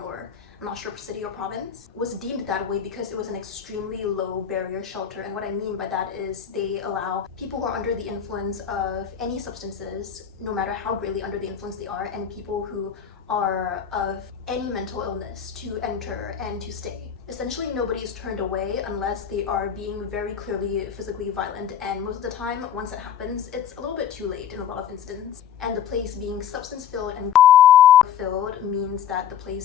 or I'm not sure city or province, was deemed that way because it was an extremely low barrier shelter. And what I mean by that is they allow people who are under the influence of any substances, no matter how greatly under the influence they are, and people who are of any mental illness to enter and to stay. Essentially, nobody is turned away unless they are being very clearly physically violent, and most of the time, once that happens, it's a little bit too late in a lot of incidents. And the place being substance-filled and filled means that the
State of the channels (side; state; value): right; quieter; 9.0 dB